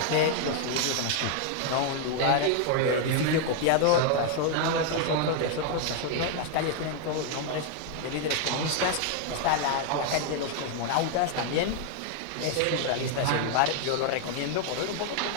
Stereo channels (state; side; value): different; both; correlation 0.00